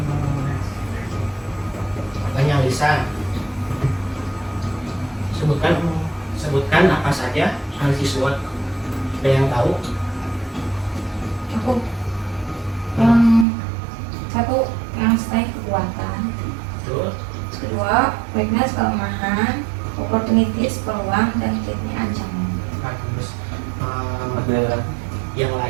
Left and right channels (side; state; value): left; drops out; at 13.5 s